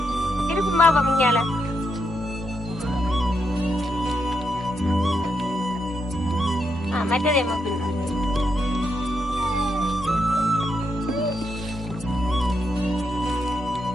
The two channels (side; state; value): both; normal; correlation 0.81